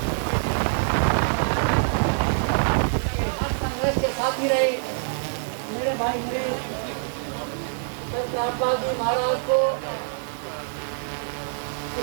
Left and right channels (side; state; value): left; silent; digital silence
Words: रामपाल जी महाराज को